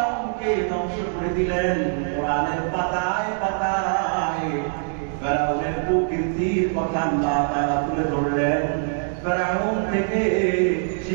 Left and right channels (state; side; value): silent; left; digital silence